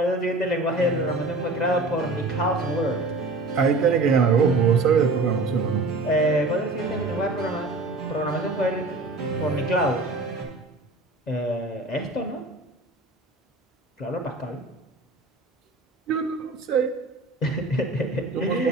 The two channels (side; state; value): left; quieter; 3.1 dB